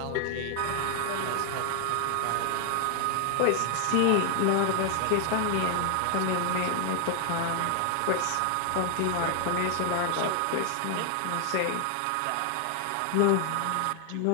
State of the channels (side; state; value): both; different; correlation 0.00